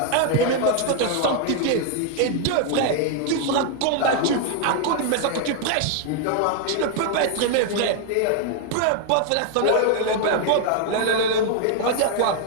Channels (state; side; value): different; both; correlation 0.00